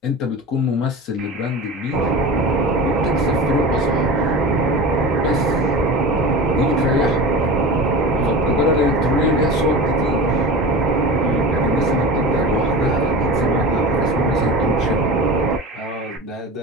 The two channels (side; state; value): both; normal; correlation 0.31